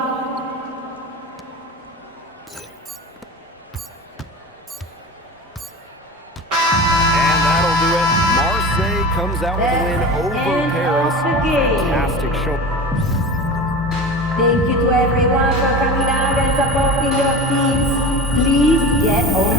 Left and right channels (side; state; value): both; normal; correlation 0.32